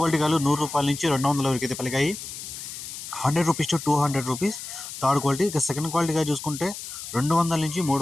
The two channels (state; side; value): noise; left; hiss, 10 dB below the sound